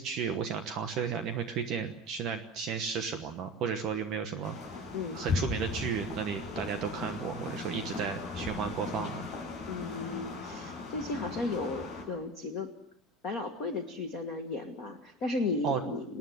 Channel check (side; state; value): both; normal; correlation 0.31